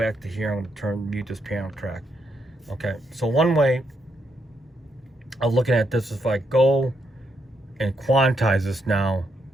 to here. I'm going to mute this piano track. Okay, so one way of looking at this is if I go and quantize this now,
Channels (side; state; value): both; normal; correlation 0.78